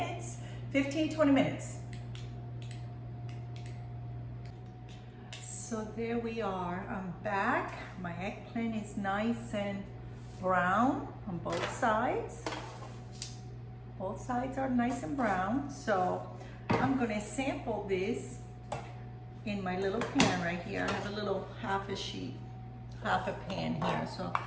15-20 minutes. So there we are, I'm back. My eggplant is nice and brown on both sides. Both sides are nice and brown. So I'm gonna sample this in my little pan right here. I have a little half a pan here. So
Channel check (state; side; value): identical; both; correlation 1.00